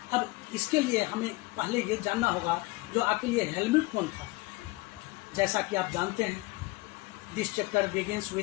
अब इसके लिए हमें पहले ये जानना होगा जो आखिर ये हेलमुट कौन था। जैसा कि आप जानते हैं, this chapter begins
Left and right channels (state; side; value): quieter; right; 22.1 dB